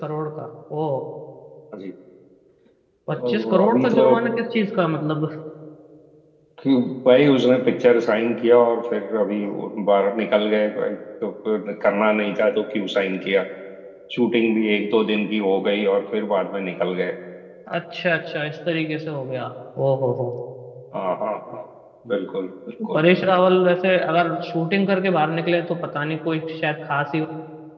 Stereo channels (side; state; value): both; identical; correlation 1.00